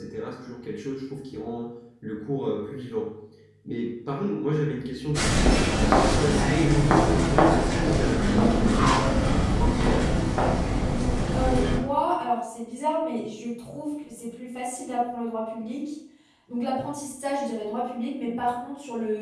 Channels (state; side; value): identical; both; correlation 1.00